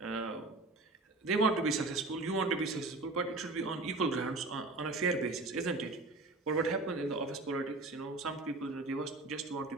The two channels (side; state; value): left; quieter; 3.2 dB